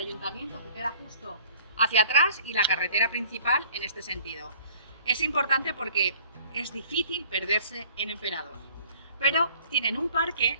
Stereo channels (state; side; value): inverted; both; correlation -0.52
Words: que queda justo hacia atrás y la carretera principal en este sentido. Es importante porque es difícil perderse en Emperador, pero tienen un parque